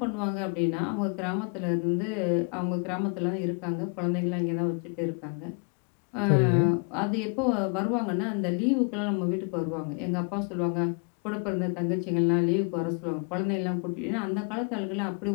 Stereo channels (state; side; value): quieter; right; 36.2 dB